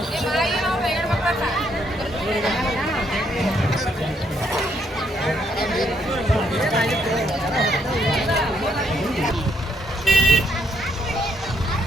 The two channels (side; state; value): both; normal; correlation 0.73